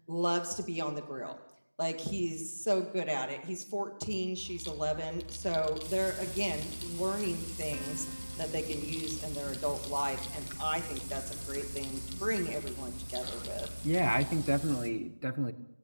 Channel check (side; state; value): both; inverted; correlation -1.00